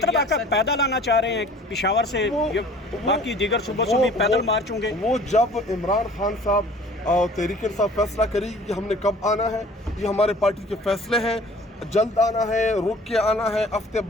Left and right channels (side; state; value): both; normal; correlation 0.49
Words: आप पैदल आना चाह रहे हैं पिशावर से, बाकी दीगर सूबों से भी पैदल मार्च होंगे? वो जब इमरान खान साहब तहरीक इंसाफ फैसला करेगी कि हमने कब आना है, ये हमारे पार्टी के फैसले हैं, जल्द आना है, रुक के आना है, हफ्ते